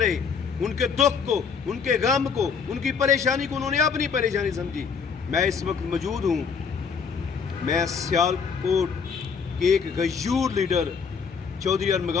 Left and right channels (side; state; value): right; quieter; 6.0 dB